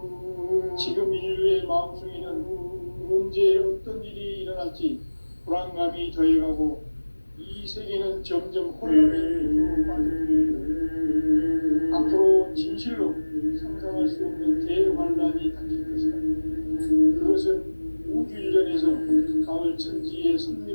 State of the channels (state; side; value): inverted; both; correlation -1.00